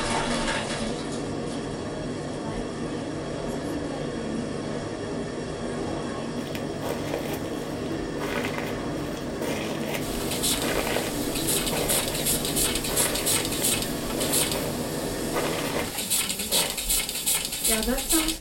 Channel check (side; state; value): both; identical; correlation 1.00